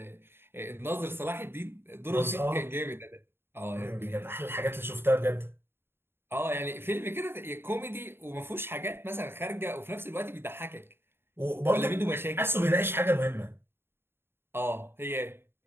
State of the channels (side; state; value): left; late; 0.11 ms